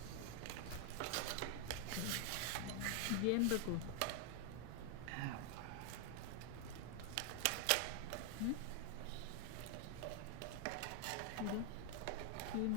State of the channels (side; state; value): both; different; correlation 0.00